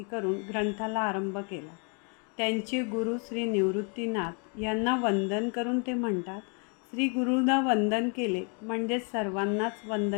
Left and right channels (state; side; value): quieter; right; 37.7 dB